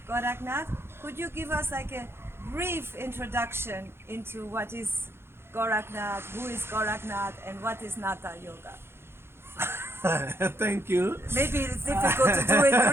Gorakhnath. Could you give us like a brief introduction into what is Gorakhnath, who is Gorakhnath, and what is Natha yoga? Thank you. Maybe it's difficult to do it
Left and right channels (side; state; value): left; late; 0.12 ms